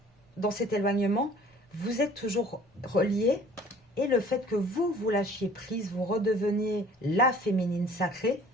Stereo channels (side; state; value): both; normal; correlation 0.51